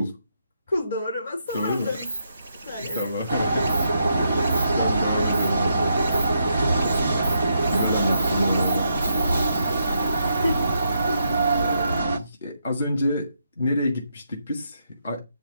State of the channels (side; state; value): both; inverted; correlation -0.79